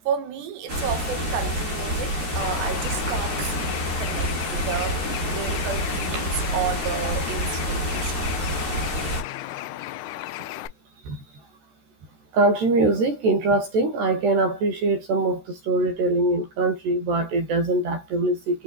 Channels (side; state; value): left; late; 13 ms